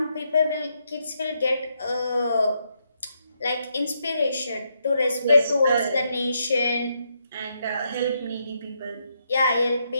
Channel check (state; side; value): inverted; both; correlation -0.79